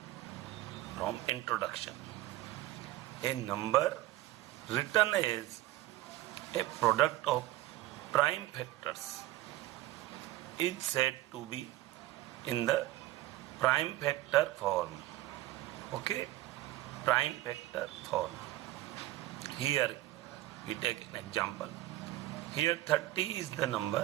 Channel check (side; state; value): left; quieter; 16.0 dB